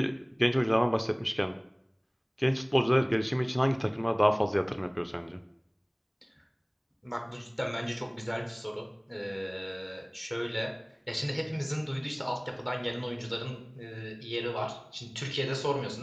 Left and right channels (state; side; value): identical; both; correlation 1.00